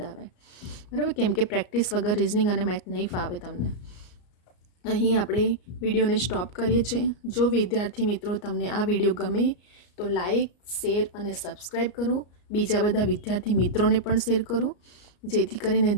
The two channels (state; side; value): late; right; 34 ms